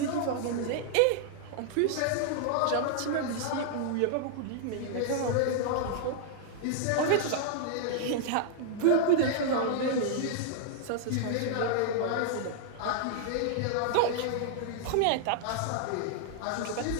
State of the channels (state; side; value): different; both; correlation -0.01